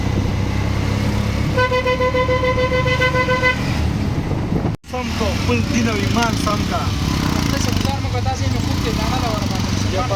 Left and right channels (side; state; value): both; identical; correlation 1.00